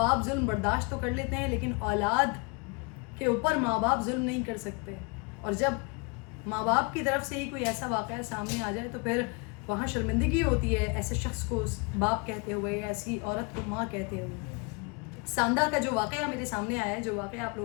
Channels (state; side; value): quieter; right; 31.1 dB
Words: जुल्म बर्दाश्त तो कर लेते हैं, लेकिन औलाद के ऊपर माँ बाप जुल्म नहीं कर सकते। और जब माँ बाप की तरफ से ही कोई ऐसा वाक़या सामने आ जाए तो फिर वहाँ शर्मिंदगी होती है ऐसे शख्स को बाप कहते हुए या ऐसी औरत को माँ कहते हुए। सांदा का जो वाक़या मेरे सामने आया है, जो वाक़या आप